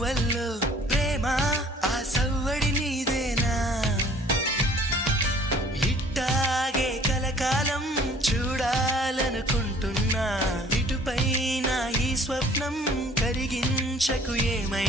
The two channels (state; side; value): normal; both; correlation 0.54